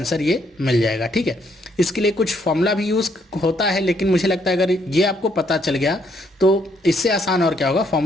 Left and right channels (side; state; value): both; normal; correlation 0.71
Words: ये मिल जाएगा। ठीक है, इसके लिए कुछ फॉर्मूला भी यूज़ होता है, लेकिन मुझे लगता है अगर ये आपको पता चल गया तो इससे आसान और क्या होगा।